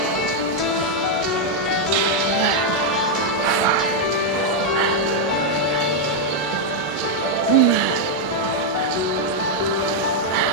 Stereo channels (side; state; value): both; normal; correlation -0.01